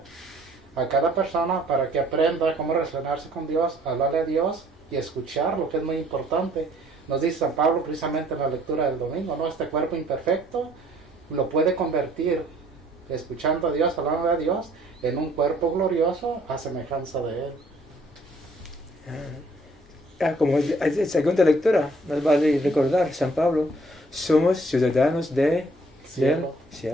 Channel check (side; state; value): both; normal; correlation 0.60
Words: a cada persona para que aprenda cómo relacionarse con Dios, hablarle a Dios y escuchar, lo que es muy importante. Nos dice San Pablo precisamente en la lectura del domingo, ¿no? Este cuerpo imperfecto lo puede convertir, escuchando a Dios, hablando a Dios, en un cuerpo glorioso a semejanza de Él. Como en segunda lectura, nos vale recordar, San Pablo, somos ciudadanos del cielo,